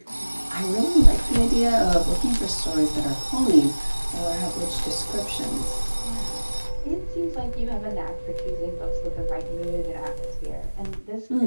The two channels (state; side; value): inverted; both; correlation -1.00